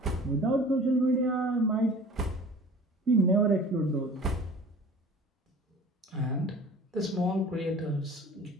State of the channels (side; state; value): both; normal; correlation 0.44